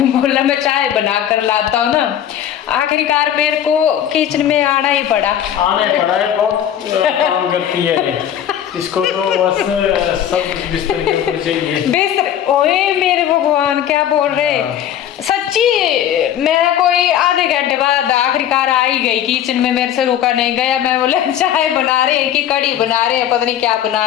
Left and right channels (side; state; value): right; quieter; 10.4 dB